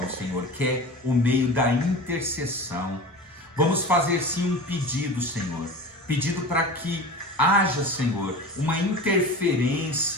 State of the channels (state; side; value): normal; both; correlation 0.33